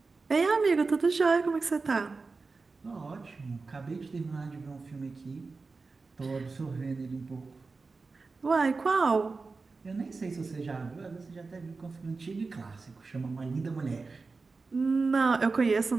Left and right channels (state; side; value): quieter; left; 4.1 dB